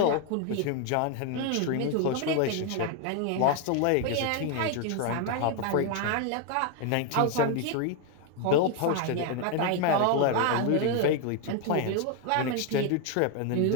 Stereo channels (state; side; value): different; both; correlation 0.01